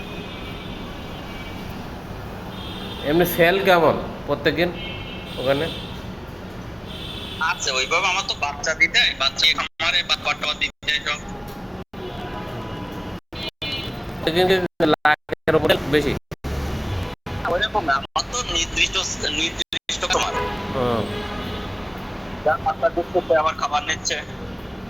এমনি সেল কেমন প্রত্যেকদিন ওখানে? আছে ওইভাবে, আমার তো বাচ্চা দিতে হয়, বাচ্চা খামারে বাচ্চা দিতে হয় সব। প্রত্যেকদিন লাখের উপরে বেশি? ওইরকম না, আমার তো নির্দিষ্ট নির্দিষ্ট খামার, হুম। যার বাচ্চা দিচ্ছে সে আবার খাবার নিচ্ছে।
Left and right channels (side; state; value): both; identical; correlation 1.00